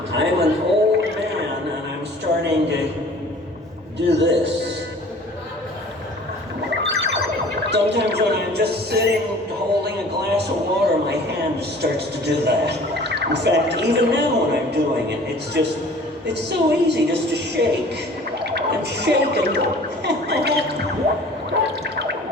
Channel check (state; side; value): normal; both; correlation 0.47